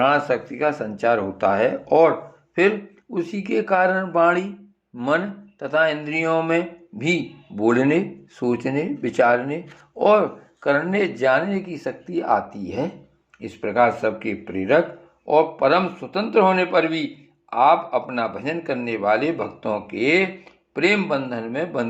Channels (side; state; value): both; identical; correlation 1.00